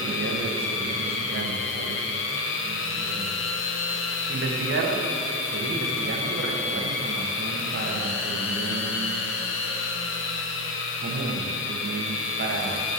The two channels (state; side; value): normal; both; correlation 0.11